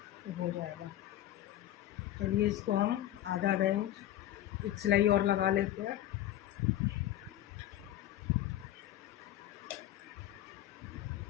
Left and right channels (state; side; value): quieter; right; 13.2 dB